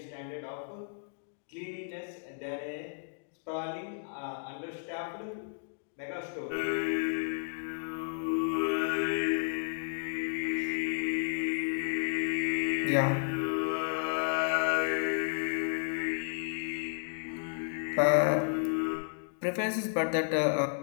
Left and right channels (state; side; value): silent; right; digital silence